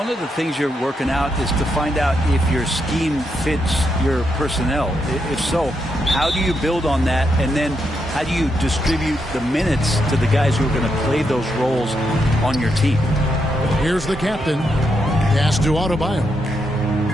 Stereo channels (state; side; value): normal; both; correlation 0.81